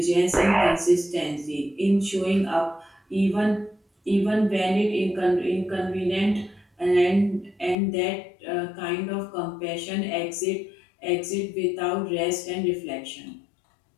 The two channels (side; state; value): right; drops out; at 7.8 s